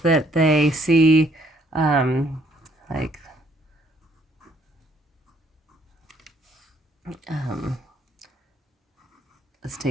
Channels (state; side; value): normal; both; correlation 0.66